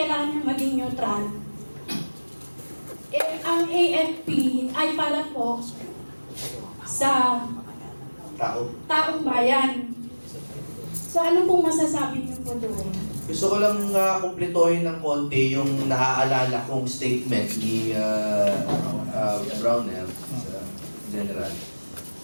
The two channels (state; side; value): inverted; both; correlation -1.00